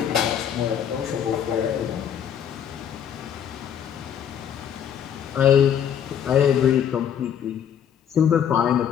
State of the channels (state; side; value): quieter; right; 8.9 dB